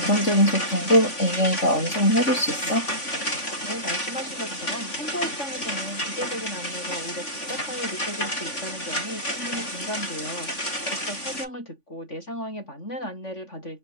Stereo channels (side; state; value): right; late; 3.5 ms